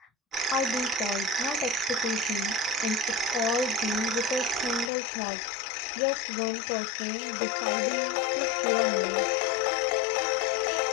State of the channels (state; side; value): drops out; right; at 4.9 s